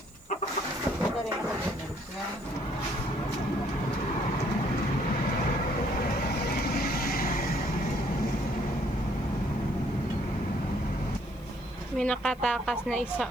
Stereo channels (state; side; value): noise; left; hiss, 28 dB below the sound